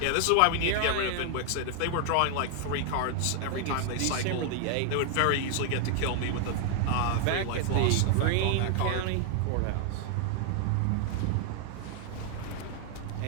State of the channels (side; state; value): both; different; correlation 0.00